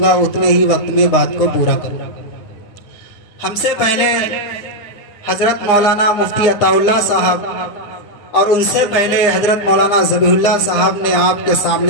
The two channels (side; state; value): right; late; 9.8 ms